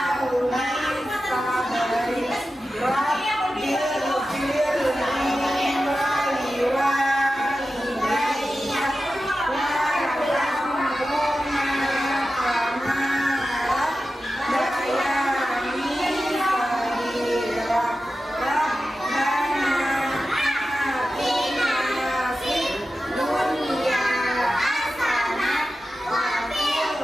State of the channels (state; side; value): normal; both; correlation 0.93